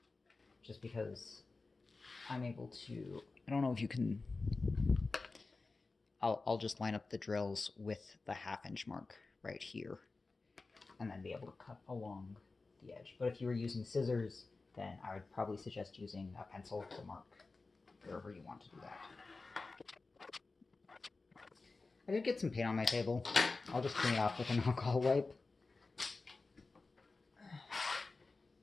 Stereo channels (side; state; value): right; quieter; 3.8 dB